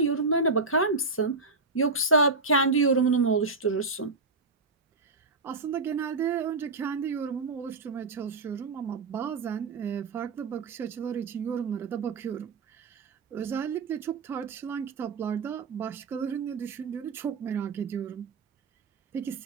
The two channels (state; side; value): quieter; left; 3.9 dB